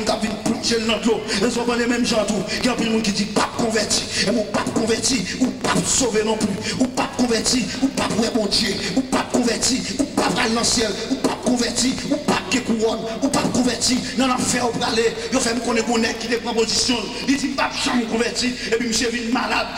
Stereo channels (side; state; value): both; identical; correlation 1.00